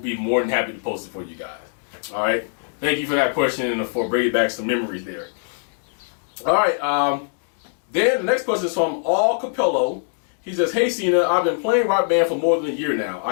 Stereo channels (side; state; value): right; silent; digital silence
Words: more than happy to post it for you guys. All right? Thank you for that question and for bringing back some memories there. All right. Then the next question is from allcapello. He says, "Hey Cena, I've been playing Rock Band for more than a year now.